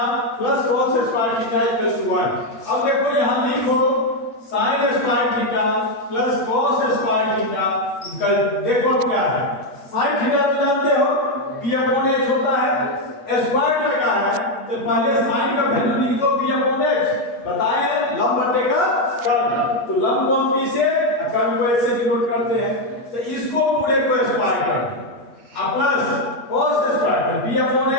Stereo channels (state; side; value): late; right; 8.4 ms